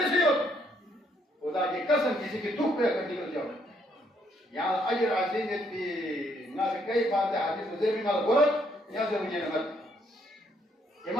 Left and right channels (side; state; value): both; normal; correlation 0.70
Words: से हो खुदा की कसम किसी की दुख पे कर निकल जाओ यहाँ अजर अजीम की ना कई बातें हाजिर मुझे भी माल बोल यहाँ से मुझे मत